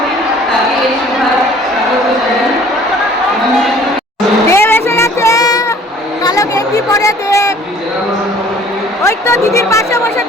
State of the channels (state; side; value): normal; both; correlation 0.53